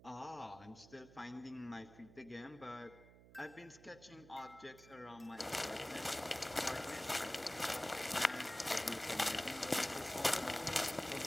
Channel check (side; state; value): right; noise; hum, 20 dB below the sound